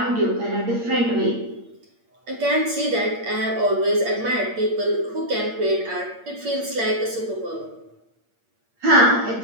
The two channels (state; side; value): late; left; 8.6 ms